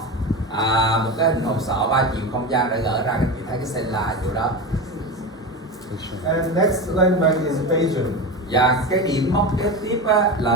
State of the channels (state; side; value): normal; both; correlation 0.23